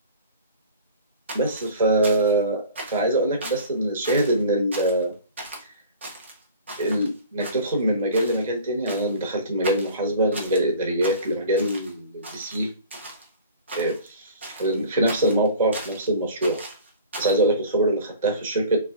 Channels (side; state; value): both; inverted; correlation -0.43